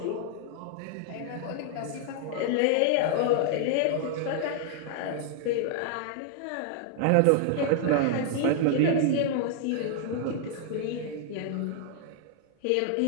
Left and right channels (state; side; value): different; both; correlation 0.00